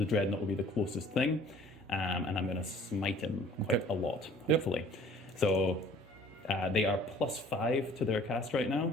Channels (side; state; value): both; normal; correlation 0.52